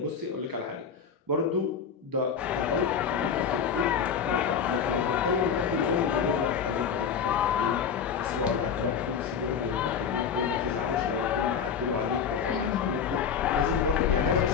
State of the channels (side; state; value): right; quieter; 7.0 dB